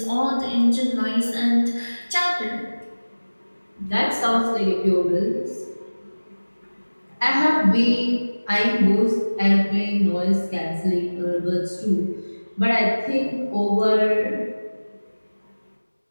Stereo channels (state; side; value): inverted; both; correlation -1.00